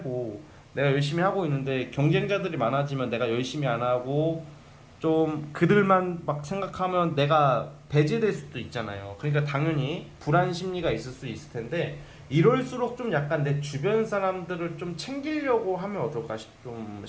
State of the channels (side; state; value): both; identical; correlation 1.00